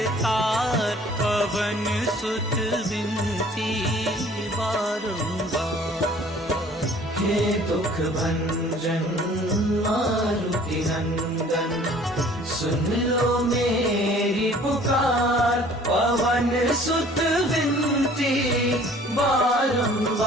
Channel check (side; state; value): both; normal; correlation 0.52